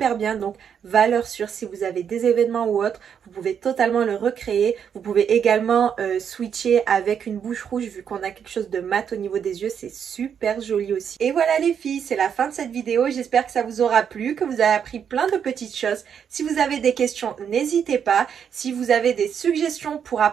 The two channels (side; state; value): left; quieter; 7.8 dB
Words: bien. Donc, valeur sûre, si vous avez des événements ou autres, vous pouvez totalement le recréer. Vous pouvez également switcher avec une bouche rouge vu qu'on a quelque chose de mat au niveau des yeux. C'est super joli aussi. Et voilà les filles, c'est la fin de cette vidéo. J'espère que ça vous aura plu, que vous avez appris plein de petites choses. Si vous avez des questions, n'hésitez pas. Si vous avez des suggestions pour